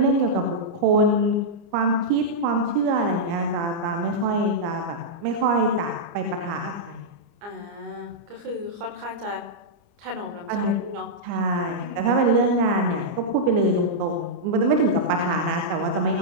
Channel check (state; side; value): late; left; 29 ms